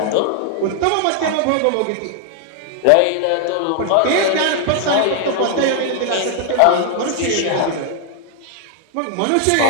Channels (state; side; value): different; both; correlation 0.00